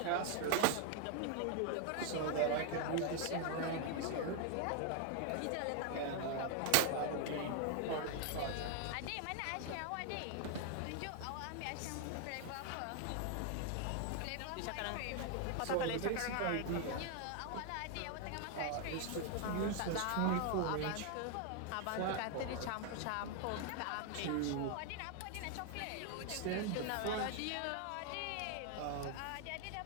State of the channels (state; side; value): different; both; correlation 0.00